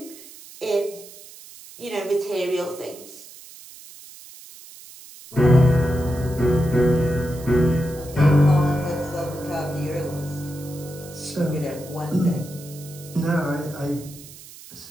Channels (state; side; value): noise; right; hiss, 18 dB below the sound